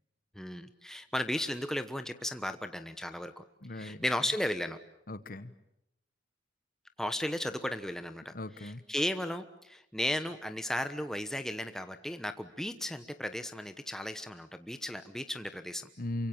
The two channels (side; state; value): both; normal; correlation 0.86